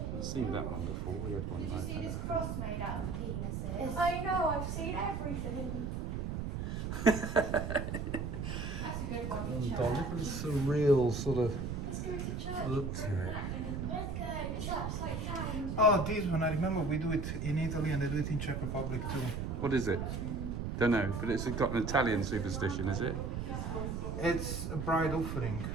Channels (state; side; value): noise; right; rumble, 3 dB below the sound